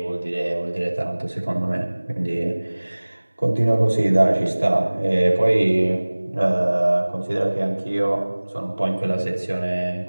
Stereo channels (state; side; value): inverted; both; correlation -1.00